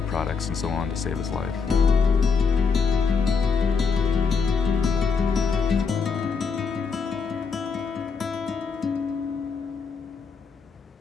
products and so on to save his life.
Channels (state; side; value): quieter; right; 5.3 dB